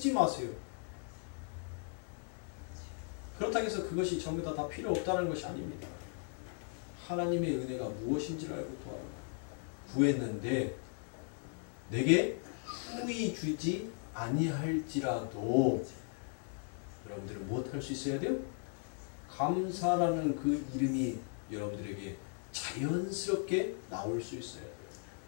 마세요. 그렇다고 해서 그것이 전부 다 필요 없다는 것이 아닙니다. 하나님의 은혜가 무엇인지를 알고 구했는데 내게 후히 주지 아니할지라도 여러분들은 무엇할 수 있어야 돼요? 감사라는 그 이름이 여러분들에게 자연스럽게 나올 수 있어야 돼요.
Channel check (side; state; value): right; silent; 53 dB below the other